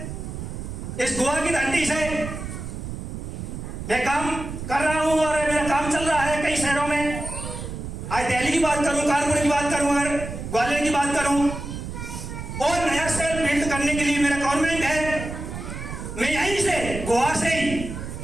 इस गोवा की धरती से मैं काम कर रहा हूं और मेरा काम चल रहा है कई शहरों में। आज दिल्ली की बात करूं, कानपुर की बात करूं, अगर ग्वालियर की बात करूं, और नया शहर बिल्ड करने के लिए मेरा गवर्नमेंट है। मैं यहीं से गोवा से ही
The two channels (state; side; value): noise; right; rumble, 8 dB below the sound